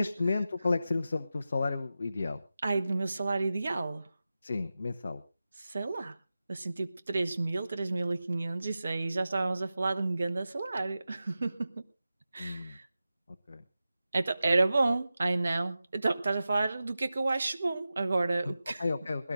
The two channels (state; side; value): inverted; both; correlation -0.93